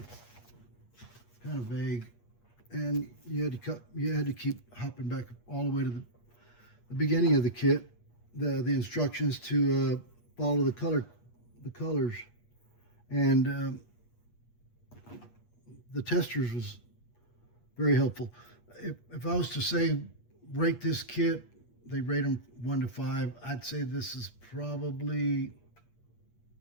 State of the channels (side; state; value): right; late; 8.4 ms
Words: kind of vague, and you had to keep hopping back all the way to the beginning of the kit, the instructions to follow the colors, and the Testors was very helpful. If I was to say rate this kit, they rate them 1 to 5. I'd say this is probably